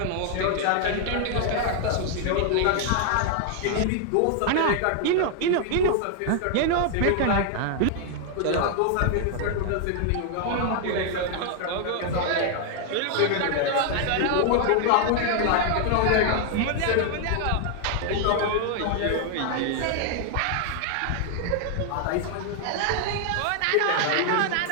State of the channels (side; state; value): both; different; correlation 0.00